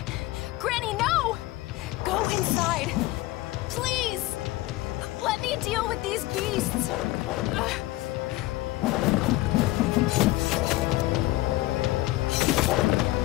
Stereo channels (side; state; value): right; quieter; 18.1 dB